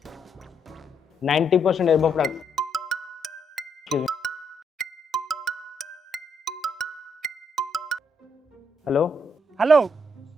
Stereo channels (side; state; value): both; normal; correlation 0.76